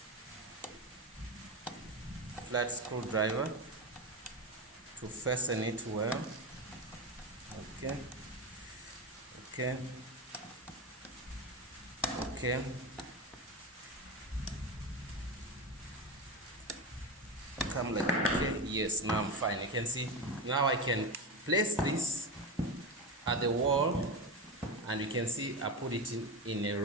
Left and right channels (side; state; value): both; normal; correlation 0.20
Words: flat screwdriver to fasten it well. Okay. Okay. Okay. Come like, okay. Yes, now I'm fine. You can see now I can place this at the wall, and you can see I put it in a